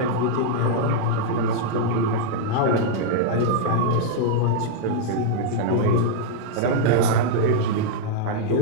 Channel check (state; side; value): different; both; correlation -0.01